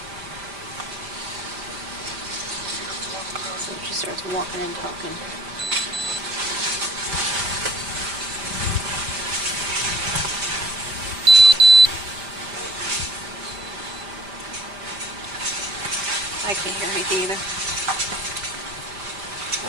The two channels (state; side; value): late; left; 5.0 ms